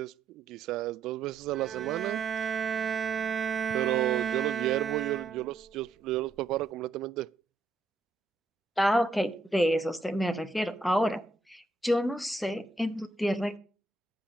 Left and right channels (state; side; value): quieter; left; 3.4 dB